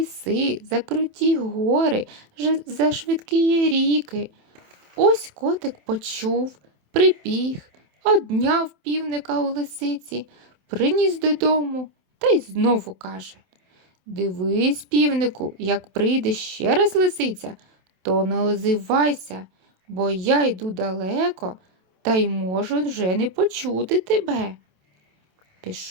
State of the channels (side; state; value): left; late; 27 ms